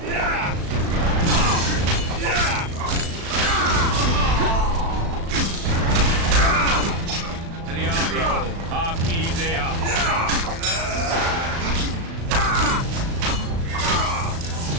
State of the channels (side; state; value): left; late; 36 ms